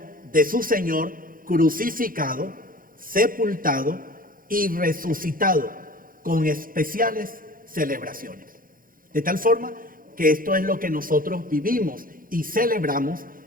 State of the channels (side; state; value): left; late; 0.41 ms